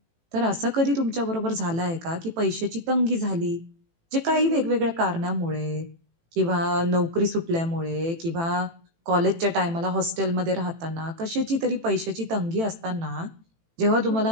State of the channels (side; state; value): left; late; 18 ms